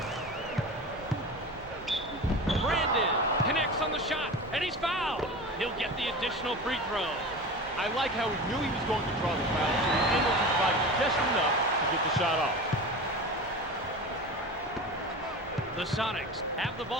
Brandon connects on the shot, and he's fouled. He'll get the additional free throw. I like how he knew he was going to draw the foul, so he angled his body just enough to get the shot off. The Sonics have the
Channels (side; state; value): both; normal; correlation 0.31